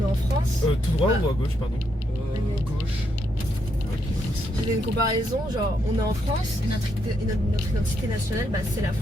est en France. Tout droit ou à gauche pardon? Gauche. Je donne une comparaison genre on est en France, notre identité nationale bah, c'est la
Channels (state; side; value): normal; both; correlation 0.78